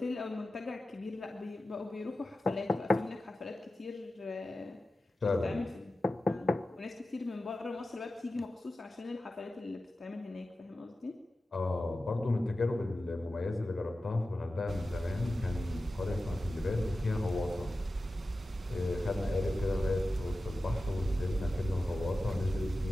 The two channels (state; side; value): normal; both; correlation 0.94